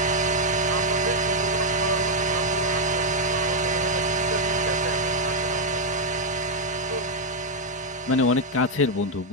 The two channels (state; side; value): normal; both; correlation 0.00